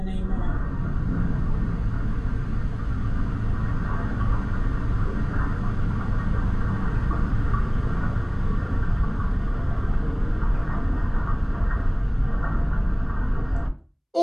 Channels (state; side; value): identical; both; correlation 1.00